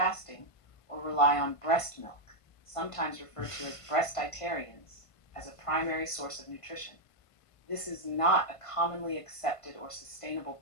or rely on breast milk, sometimes referred to as breastitarians, as a primary source of nutrition. This is not a commonly accepted or sustainable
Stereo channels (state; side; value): late; right; 1.5 ms